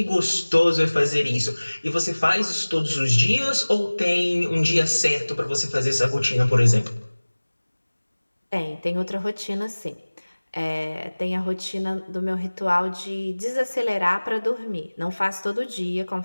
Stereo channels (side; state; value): both; inverted; correlation -1.00